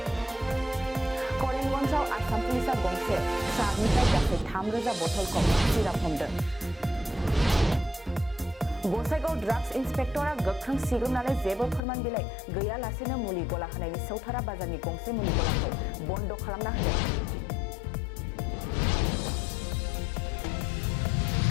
करिमगन्जआव आसाम पुलिसआ गंसे ट्राकनिफ्राय गासै 3000 बथलखौ सिराप हमदों। गसाइगाव ड्राग्स इन्सपेक्टरा गोख्रों सिग्रोमनानै जेबो फोरमान बिलाइ गैयालासेनो मुलि गला होनायनि सौथारा बाजारनि गंसे मुलि गलाखौ बन्द खालामना होदों।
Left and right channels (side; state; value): right; drops out; at 11.8 s